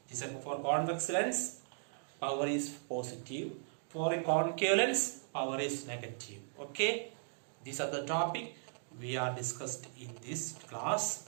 for convex lens, power is positive. For a concave lens, power is negative. Okay, these are the topic we are discussed in this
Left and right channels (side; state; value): left; silent; digital silence